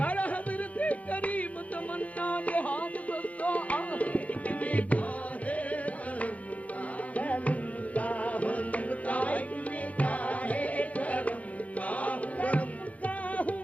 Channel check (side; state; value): right; late; 0.068 ms